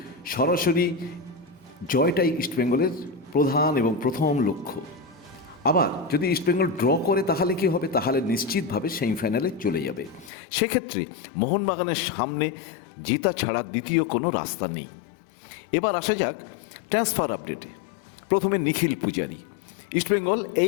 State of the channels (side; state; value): right; drops out; at 10.3 s